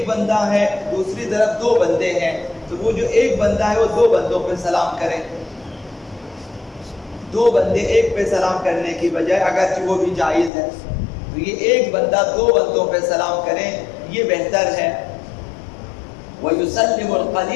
بندہ ہے دوسری طرف دو بندے ہیں تو وہ جو ایک بندہ ہے وہ دو بندوں پہ سلام کرے، دو بندے ایک پہ سلام کرنے کی بجائے اگرچہ وہ بھی جائز ہے تو یہ ایک بندہ دو بندوں پہ سلام کریں یہ بہتر ہے۔ وَيُسَلِّمُ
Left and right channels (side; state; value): right; drops out; at 10.5 s